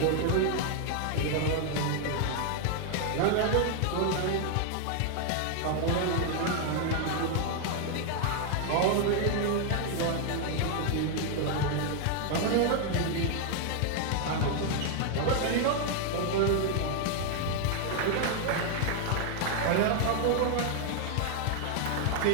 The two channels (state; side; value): different; both; correlation 0.00